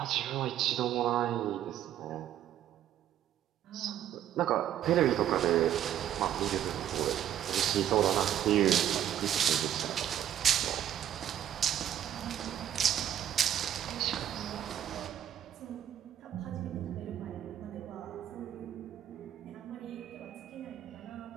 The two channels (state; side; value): quieter; left; 10.9 dB